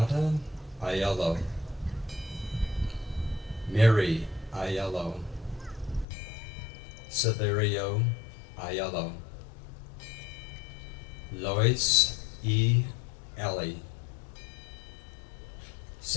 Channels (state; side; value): drops out; right; at 6.1 s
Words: Aiello. Mary Aiello. Severio Aiello. Lois E. Ellie.